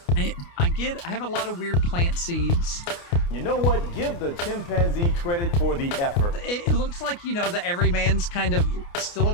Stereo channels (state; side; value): late; right; 29 ms